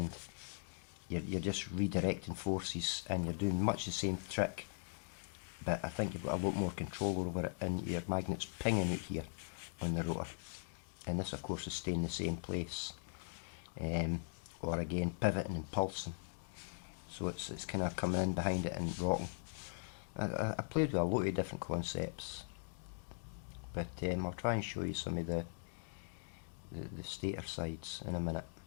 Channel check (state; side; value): silent; right; digital silence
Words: you're just redirecting forces, and you're doing much the same trick, but I think you've got a lot more control over it, and your magnet's pinging out here on the rotor, and this of course is staying in the same place, or again pivoting and pulsing, so it's kind of coming in behind it and rocking. I played with a lot of different concepts, but I'll try and show you some of the stator sides in a minute.